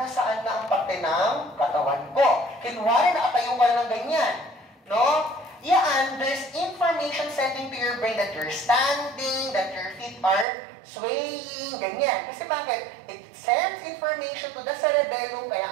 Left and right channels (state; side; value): drops out; left; at 10.5 s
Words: na ang parte ng katawan ko. Kunwari, nakatayo ka na ng ganyan. No? Yan, there's information sending to your brain that you're standing, that your feet are swaying, ganyan. Kasi bakit? It sends information to the cerebellum, kaya